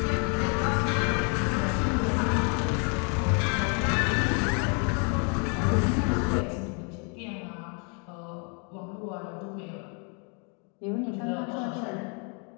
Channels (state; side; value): quieter; right; 37.7 dB